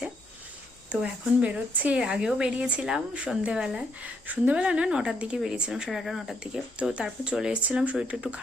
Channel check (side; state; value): both; normal; correlation 0.74